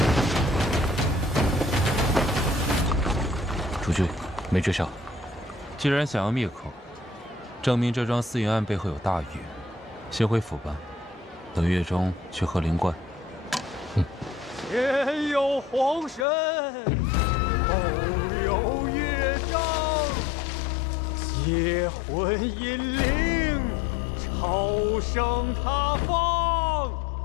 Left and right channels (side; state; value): right; drops out; at 16.2 s